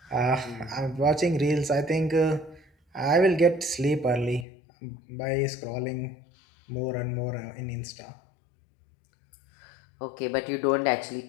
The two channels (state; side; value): drops out; right; at 4.5 s